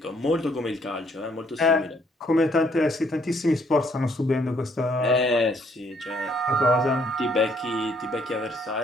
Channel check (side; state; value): both; normal; correlation 0.67